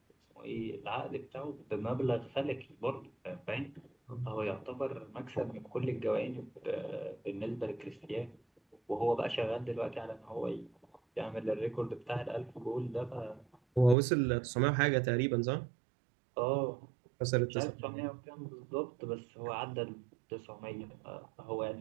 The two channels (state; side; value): drops out; left; at 14.0 s